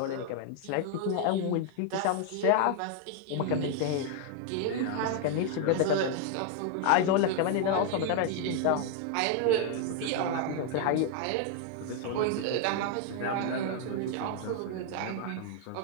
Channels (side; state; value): both; different; correlation 0.00